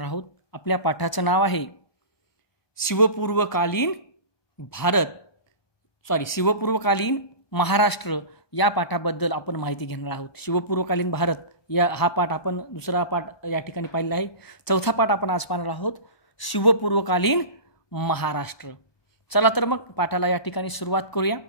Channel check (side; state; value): right; late; 1.2 ms